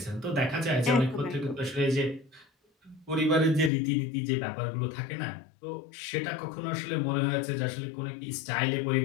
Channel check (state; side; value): drops out; right; at 3.7 s